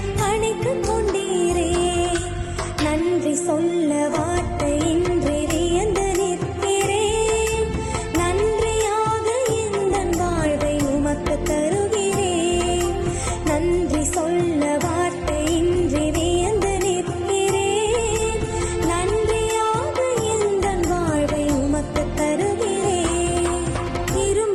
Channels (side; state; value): both; identical; correlation 1.00